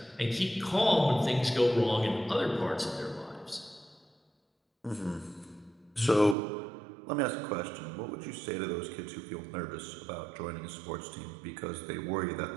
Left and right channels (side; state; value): left; drops out; at 6.4 s